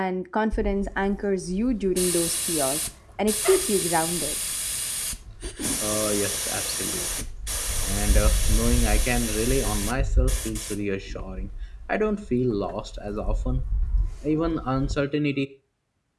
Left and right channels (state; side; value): identical; both; correlation 1.00